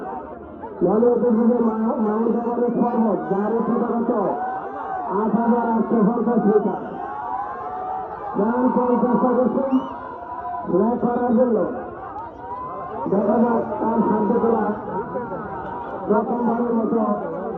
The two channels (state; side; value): identical; both; correlation 1.00